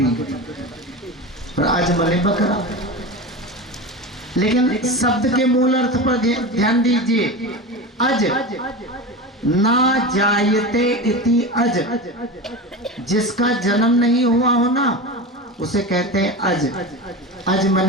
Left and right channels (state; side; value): normal; both; correlation 0.26